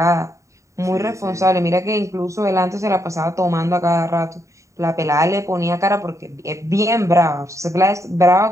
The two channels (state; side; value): late; left; 0.15 ms